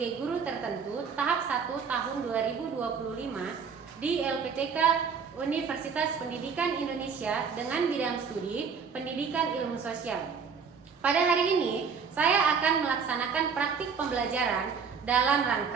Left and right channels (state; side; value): quieter; left; 6.0 dB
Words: Guru Tertentu tahap 1 tahun 2025 di LPTK Universitas Pendidikan Indonesia dengan bidang studi Pendidikan Ilmu Sosial. Pada hari ini, saya akan melaksanakan praktik pembelajaran dalam